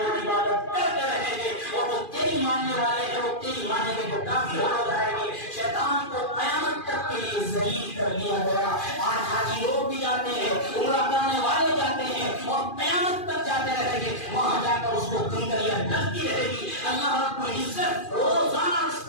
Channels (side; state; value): right; late; 2.4 ms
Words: عبادت کرتے رہیں گے، اور وہ تیری ماننے والے ہیں وہ تیری ماننے کے جو کافی ہو جائیں گے۔ شیطان کو قیامت تک کے لیے ذلیل کر دیا گیا۔ آج حاجی لوگ بھی جاتے ہیں، عمرہ کرنے والے جاتے ہیں اور قیامت تک جاتے رہیں گے، وہاں جا کر اس کو کنکریاں ڈلتی رہے گی۔ اللہ رب العزت روزانہ اس